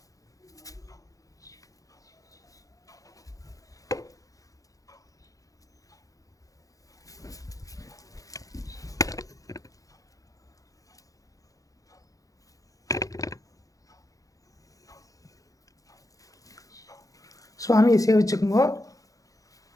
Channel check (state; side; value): late; right; 0.17 ms